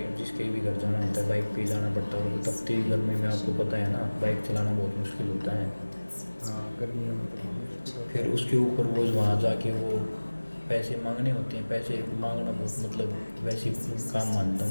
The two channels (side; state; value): both; inverted; correlation -1.00